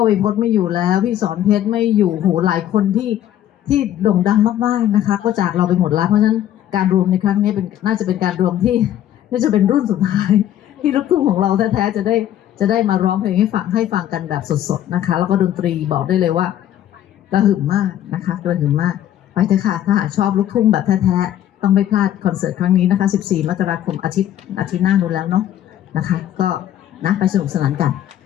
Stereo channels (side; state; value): right; quieter; 11.7 dB